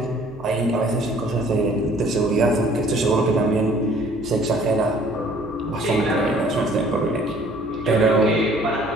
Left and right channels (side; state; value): right; noise; hum, 22 dB below the sound